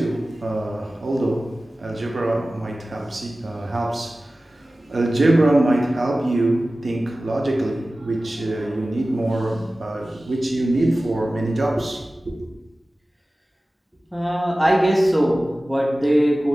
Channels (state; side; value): normal; both; correlation 0.96